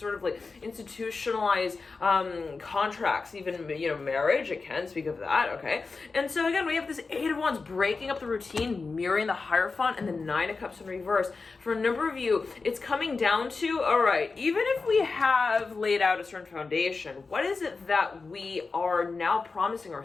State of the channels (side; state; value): right; quieter; 4.2 dB